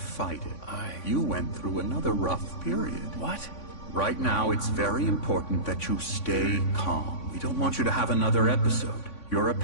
it. You went through another rough period. What? Right now, it's very important that you stay calm. We don't want you to have another episode. You're a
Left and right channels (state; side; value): late; right; 3.5 ms